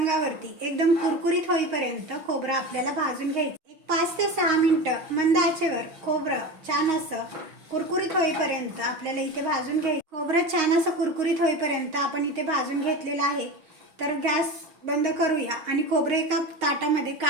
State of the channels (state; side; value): late; left; 6.4 ms